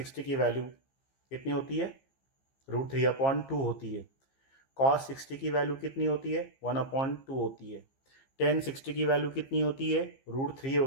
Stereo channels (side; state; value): right; late; 15 ms